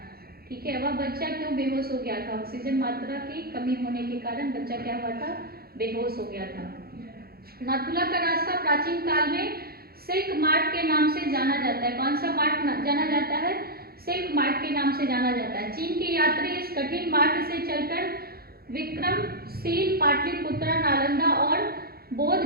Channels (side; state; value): left; late; 0.44 ms